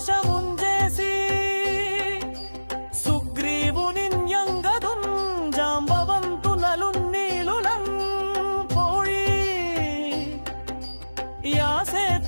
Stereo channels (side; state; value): both; inverted; correlation -1.00